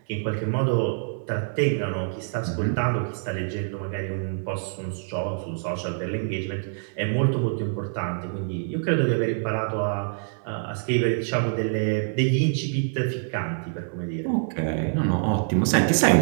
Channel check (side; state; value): left; silent; 61 dB below the other